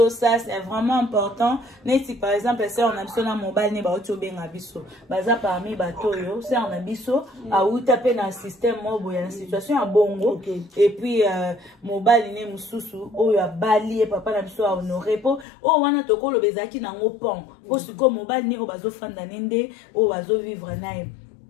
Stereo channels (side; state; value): right; drops out; at 15.5 s